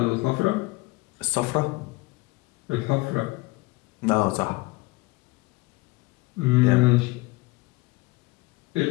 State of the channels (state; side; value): quieter; right; 23.0 dB